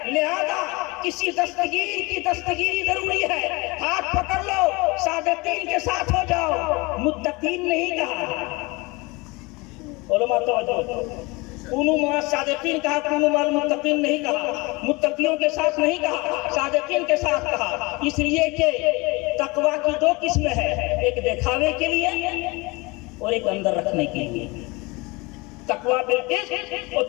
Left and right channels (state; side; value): quieter; right; 25.0 dB